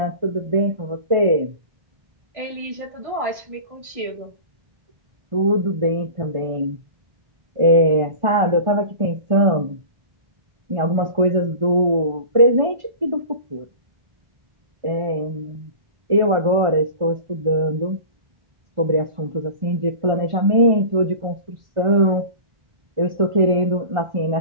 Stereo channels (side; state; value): left; late; 1.4 ms